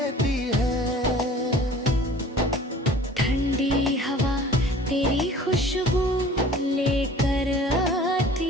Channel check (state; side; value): normal; both; correlation 0.47